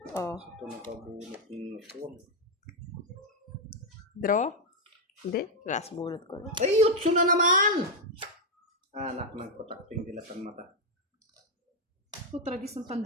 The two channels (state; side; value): normal; both; correlation 0.01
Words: Oh. Ito nakabunot yung phone. Draw? Hindi. Last bunot ko lang. Ay, utso na naman! Anak ng patakting dilatang mata. Ito, tragis ng